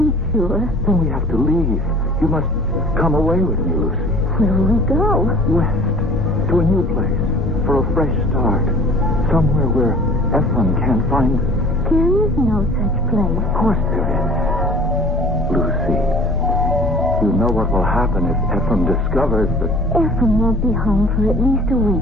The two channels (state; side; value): normal; both; correlation 0.46